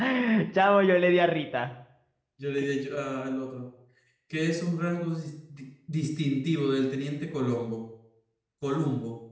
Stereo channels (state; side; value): identical; both; correlation 1.00